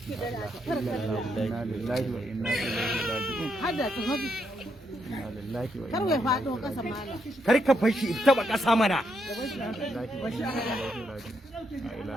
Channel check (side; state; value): both; normal; correlation 0.78